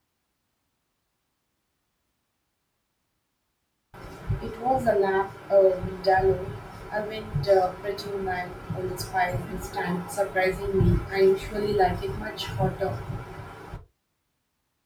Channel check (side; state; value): both; identical; correlation 1.00